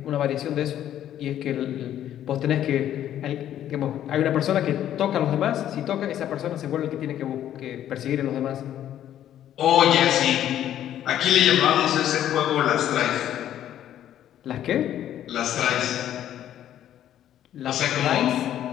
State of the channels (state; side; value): quieter; right; 11.3 dB